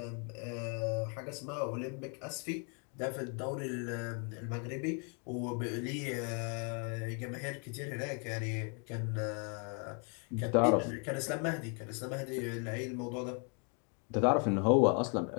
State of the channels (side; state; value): right; quieter; 38.6 dB